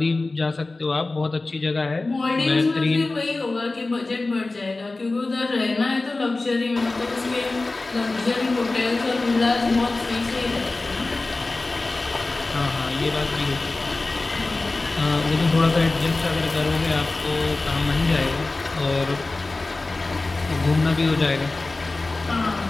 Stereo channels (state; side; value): quieter; right; 3.3 dB